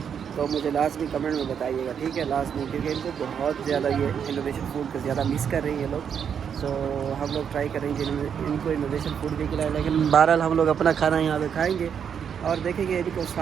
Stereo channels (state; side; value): quieter; left; 7.7 dB